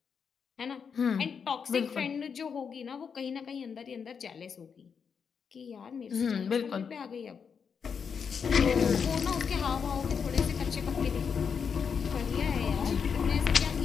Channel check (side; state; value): right; quieter; 6.5 dB